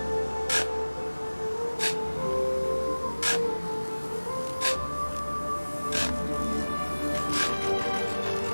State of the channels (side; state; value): both; inverted; correlation -1.00